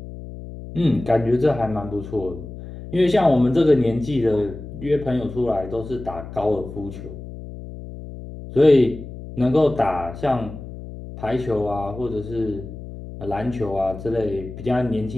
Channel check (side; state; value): left; noise; hum, 12 dB below the sound